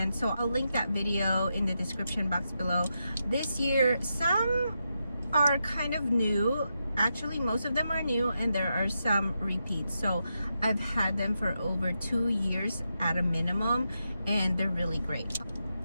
so I'll link that video in the description box below. This year, some are kind of new. Actually, most of them are new, and there are some repeats. So I've had them for over 2 years at a minimum, and they're really great.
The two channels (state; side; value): inverted; both; correlation -0.86